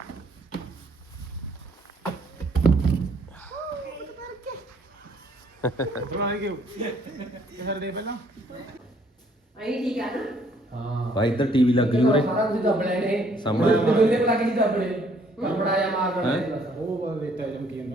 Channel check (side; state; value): both; normal; correlation 0.64